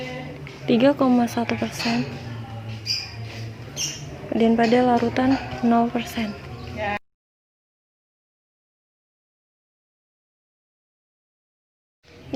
3,1%, dan pada larutan 0%.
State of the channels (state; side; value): identical; both; correlation 1.00